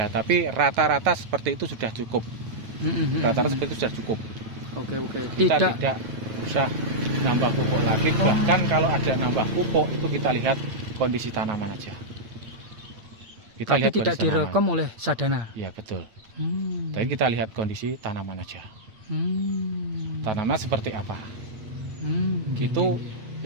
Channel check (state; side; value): late; left; 8.9 ms